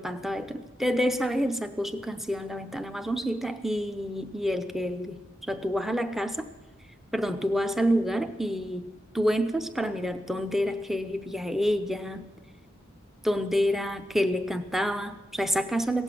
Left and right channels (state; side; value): normal; both; correlation 0.89